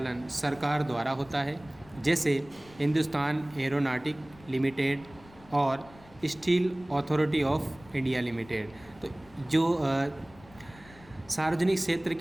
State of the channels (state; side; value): noise; left; rumble, 23 dB below the sound